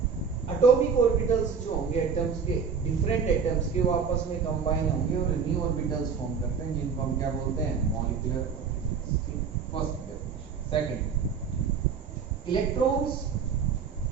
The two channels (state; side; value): quieter; left; 6.2 dB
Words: atomic orbitals जो होंगे एटम्स के, डिफरेंट एटम्स के, वो आपस में कंबाइन होंगे और न्यू ऑर्बिटल्स फॉर्म करते हैं, जिनको हम क्या बोलते हैं? Molecular orbitals. ठीक, first definition. Second, electrons